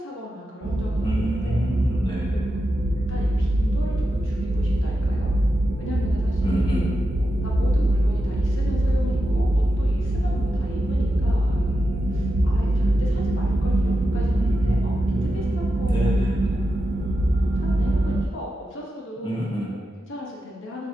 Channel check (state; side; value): normal; both; correlation 0.89